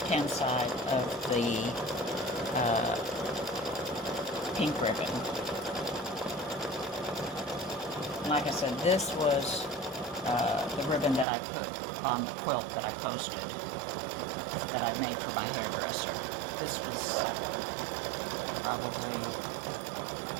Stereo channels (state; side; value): drops out; left; at 11.2 s